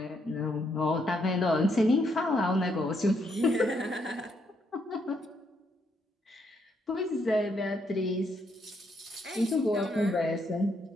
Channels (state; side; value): normal; both; correlation 0.75